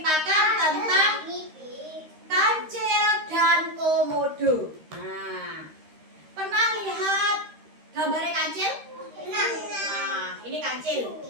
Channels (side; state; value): left; late; 13 ms